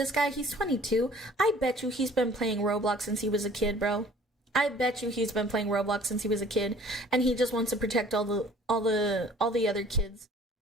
guy, he's 22. I bet you he's been playing Roblox since he was a kid, bro. I bet you he's been playing Roblox since he was a kid, and he just wants to protect all the other kids,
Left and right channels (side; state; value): both; normal; correlation 0.52